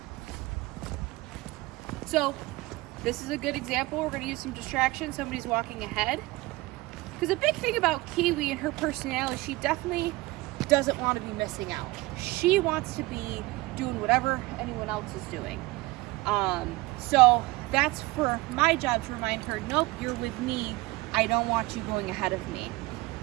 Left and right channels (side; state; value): left; quieter; 21.2 dB